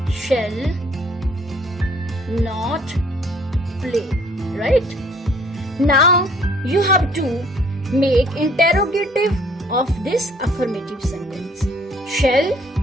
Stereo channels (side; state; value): both; normal; correlation 0.59